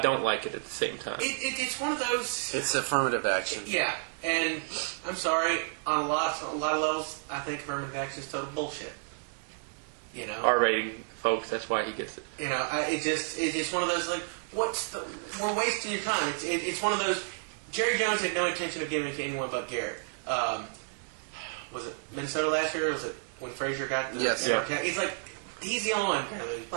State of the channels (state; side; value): silent; left; 57 dB below the other